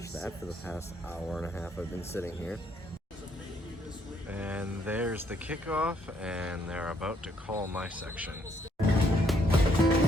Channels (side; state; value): both; normal; correlation 0.70